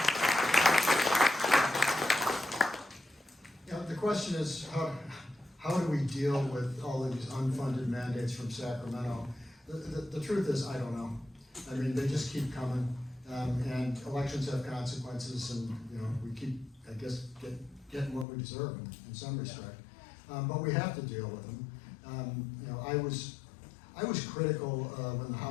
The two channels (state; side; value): drops out; right; at 18.2 s